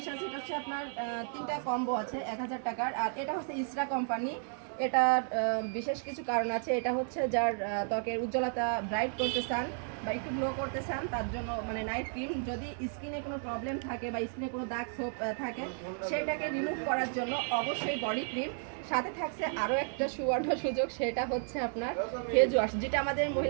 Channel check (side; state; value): left; silent; 56 dB below the other